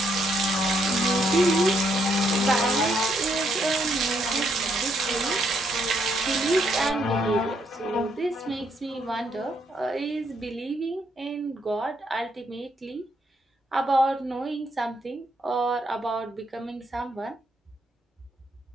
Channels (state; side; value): normal; both; correlation 0.74